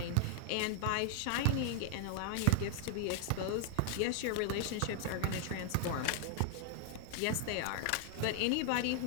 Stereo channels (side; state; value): both; different; correlation 0.00